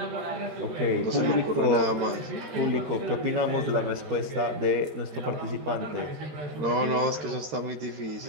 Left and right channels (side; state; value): left; late; 13 ms